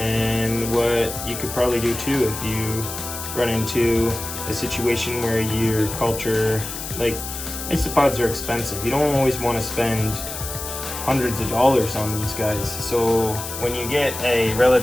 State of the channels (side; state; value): left; noise; hiss, 8 dB below the sound